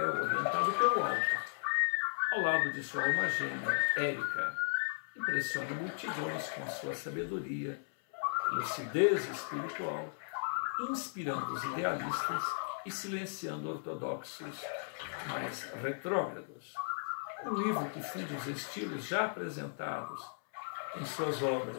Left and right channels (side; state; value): right; silent; 54 dB below the other